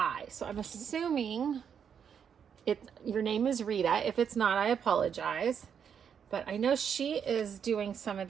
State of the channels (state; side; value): quieter; left; 7.6 dB